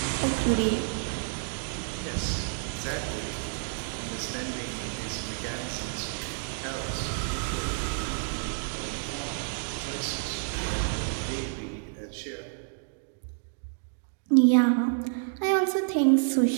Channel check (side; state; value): left; silent; digital silence